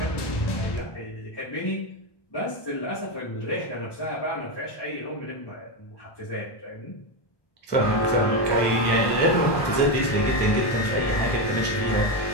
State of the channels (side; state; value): right; late; 1.2 ms